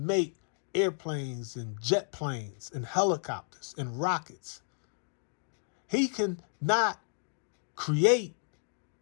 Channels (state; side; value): silent; right; digital silence